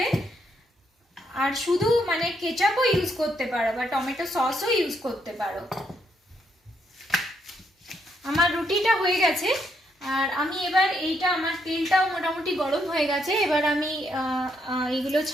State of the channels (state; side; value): normal; both; correlation 0.76